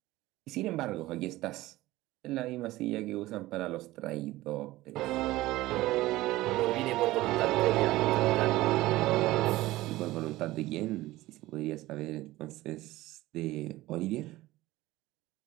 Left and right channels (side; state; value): left; quieter; 17.6 dB